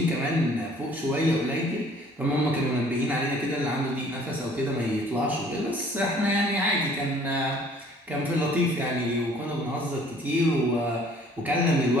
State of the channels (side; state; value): both; normal; correlation 0.55